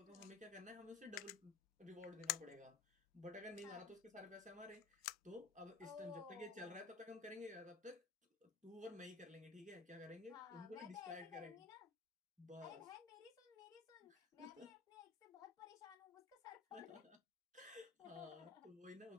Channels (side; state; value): right; quieter; 5.0 dB